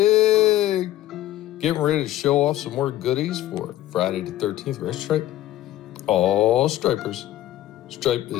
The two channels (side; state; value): right; quieter; 14.1 dB